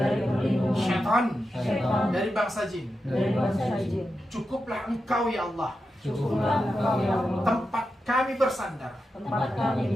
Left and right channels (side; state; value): both; normal; correlation 0.89